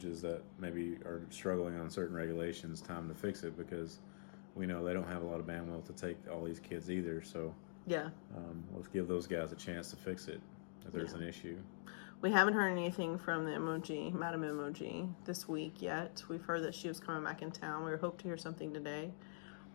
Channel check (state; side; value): silent; right; digital silence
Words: that maybe are struggling on certain regulations time to fix it, because we know they don't have a lot of bandwidth to take all these kids either. So yeah, let's give those guys a chance to fix it if there's an issue. We haven't heard anything from the MOG, Madam MOG, this week yet. We've heard that she was coming back in town. We hope to hear something today.